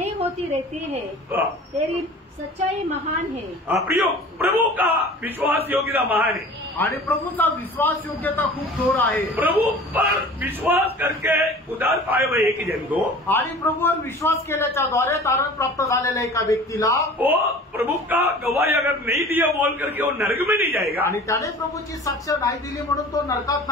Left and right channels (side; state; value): both; normal; correlation 0.42